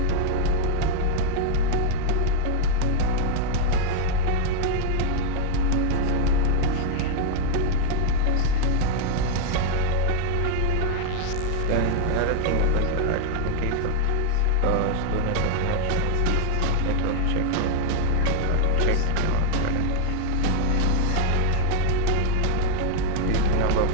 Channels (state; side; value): different; both; correlation 0.00